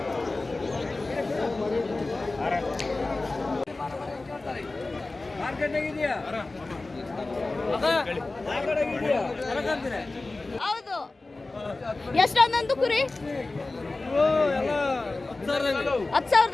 ಹೌದು. ಎಷ್ಟೊಂದೊಂದು ಕುರಿ?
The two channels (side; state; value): right; quieter; 3.2 dB